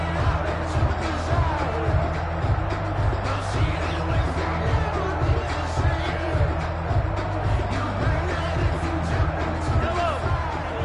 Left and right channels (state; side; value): identical; both; correlation 1.00